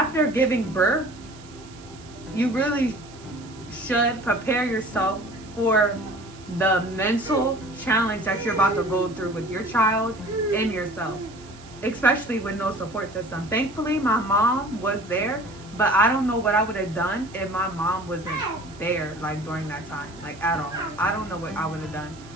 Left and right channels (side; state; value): right; noise; hiss, 22 dB below the sound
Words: giving birth, you really should prepare yourself for the mental challenge that you're about to go through with your child and yourself, especially with no support system. Thankfully, my mom was there, but I don't know what I would have done if my mom wasn't there, like during that time, like at all. I don't know what I would have done.